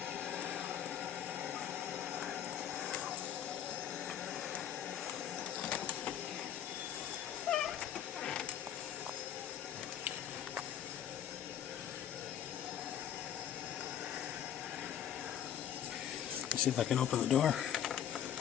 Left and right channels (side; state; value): right; quieter; 9.8 dB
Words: Let's see if I can open the door